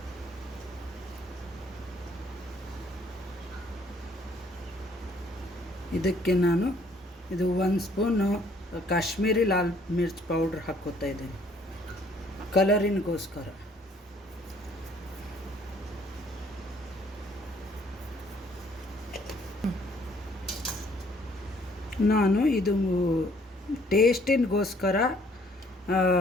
ಇದಕ್ಕೆ ನಾನು ಇದು 1 ಸ್ಪೂನು ಕಾಶ್ಮೀರಿ ಲಾಲ್ ಮಿರ್ಚ್ ಪೌಡ್ರ್ ಹಾಕ್ಕೋತಾ ಇದ್ದೇನೆ, ಕಲರಿನ್ಗೋಸ್ಕರ. ನಾನು ಇದು ಟೇಸ್ಟಿನ್ಗೋಸ್ಕರ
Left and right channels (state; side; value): normal; both; correlation 0.62